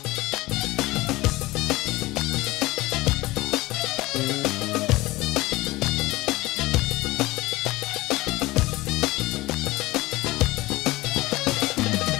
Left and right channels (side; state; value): right; quieter; 19.7 dB